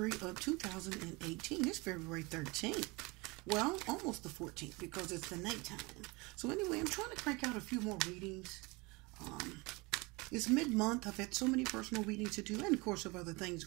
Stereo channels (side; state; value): left; quieter; 25.8 dB